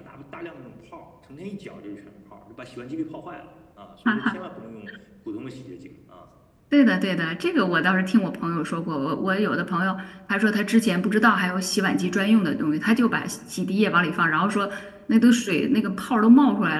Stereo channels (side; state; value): both; identical; correlation 1.00